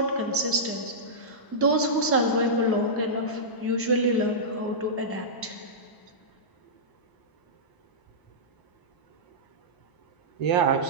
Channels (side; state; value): right; late; 1.0 ms